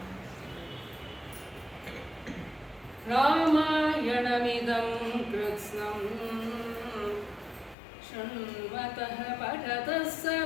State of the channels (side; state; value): right; drops out; at 7.8 s